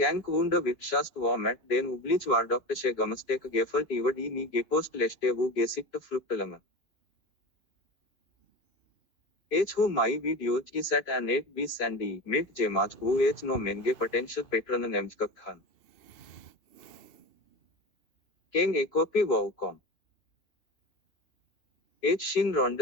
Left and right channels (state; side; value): late; right; 2.9 ms